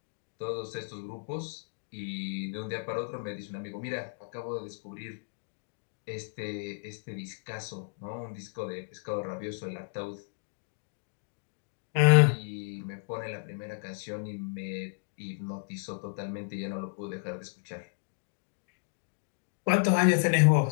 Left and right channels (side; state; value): right; silent; digital silence